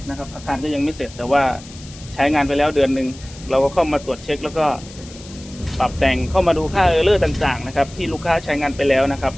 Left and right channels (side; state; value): left; noise; hiss, 19 dB below the sound